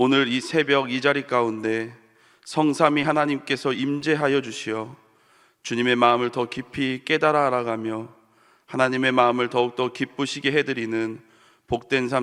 이 새벽 이 자리 가운데 성삼위 하나님께서 임재하여 주시어 주님의 마음을 더 깊이 깨달아 알아가며 하나님의 마음을 더욱더 기쁘시게 해드리는 복된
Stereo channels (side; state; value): both; identical; correlation 1.00